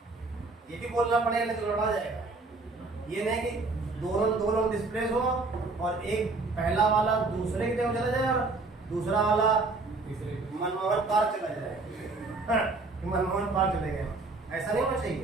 ये भी बोलना पड़ेगा, नहीं तो लड़ा जाएगा। ये नहीं कि दो लोग डिस्प्लेस हो और एक पहला वाला दूसरे की जगह चला जाए और दूसरा वाला तीसरे मनमोहन पार्क चला जाए। मनमोहन पार्क चले गए, ऐसा नहीं होना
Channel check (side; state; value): left; quieter; 3.6 dB